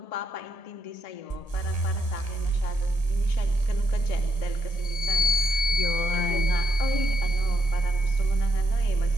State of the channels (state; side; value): late; right; 1.8 ms